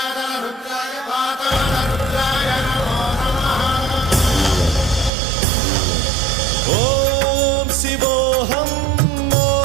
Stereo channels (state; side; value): drops out; left; at 5.1 s